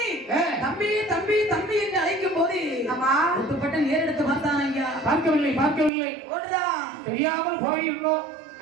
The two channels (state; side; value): drops out; left; at 5.9 s